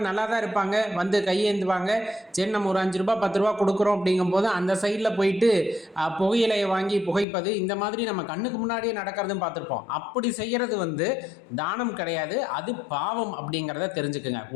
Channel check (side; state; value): right; drops out; at 7.2 s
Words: நல்லா தான் இருப்பாங்க, வந்து கையேந்துவாங்க, சரி நம்ம ஒரு 5 ரூபா 10 ரூபா கொடுக்குறோம் அப்படிங்கும்போது அந்த சைடில் போயிட்டு புகையிலையை வாங்கி புகைப்பது, இந்த மாதிரி நம்ம கண்ணுக்கு முன்னாடியே நடக்கிறதும் பார்த்துருப்போம். அப்படி செய்கிறது தானம் கிடையாது, அது பாவம் அப்படிங்கிறத தெரிஞ்சுக்குங்க.